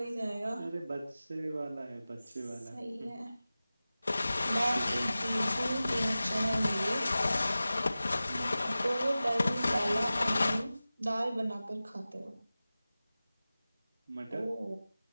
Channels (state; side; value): inverted; both; correlation -0.96